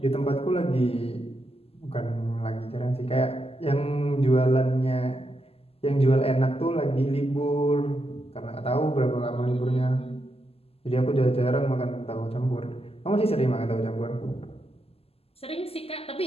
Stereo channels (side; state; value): right; late; 0.29 ms